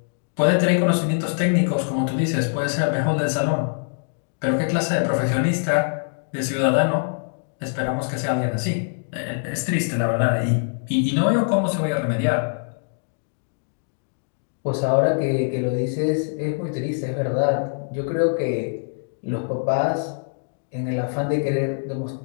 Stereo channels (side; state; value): right; silent; digital silence